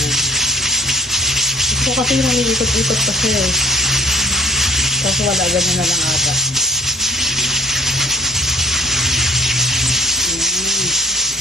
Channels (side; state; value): both; normal; correlation 0.50